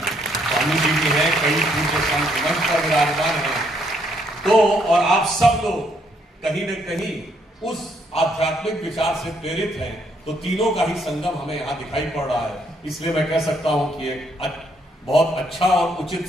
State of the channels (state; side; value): normal; both; correlation 0.71